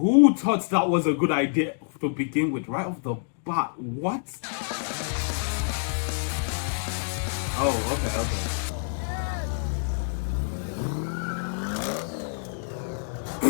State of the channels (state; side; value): silent; right; digital silence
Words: thought that was a good idea to begin with right off the bat? What? Oh, okay.